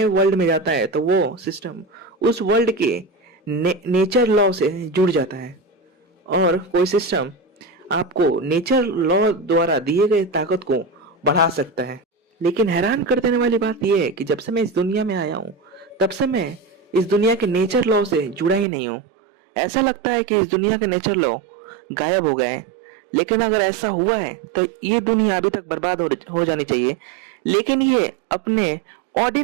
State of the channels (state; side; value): drops out; left; at 18.7 s